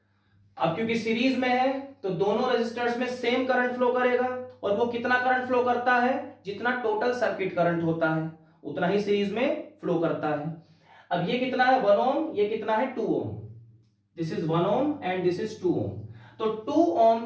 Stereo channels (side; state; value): both; identical; correlation 1.00